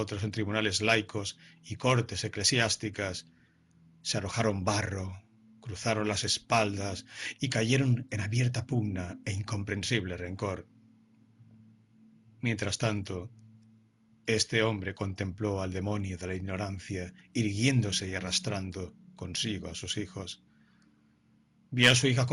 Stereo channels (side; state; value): both; identical; correlation 1.00